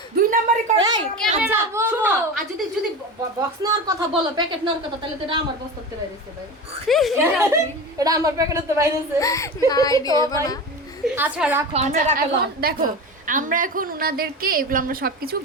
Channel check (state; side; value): normal; both; correlation 0.27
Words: দুই নাম্বারই করে এই ক্যামেরা শোনো আর যদি বক্স নেওয়ার কথা বলো প্যাকেট নেওয়ার কথা তাহলে তো এটা আমার বক্স করতে বাইরেছে ভাই এটা আমার প্যাকেটে তো বাইরেছে নাই দিও না আচ্ছা রাখো আমরা আচ্ছা, রাখলাম। এখন দেখো আমরা এখন উনাদেরকে এগুলো আমরা সবকিছু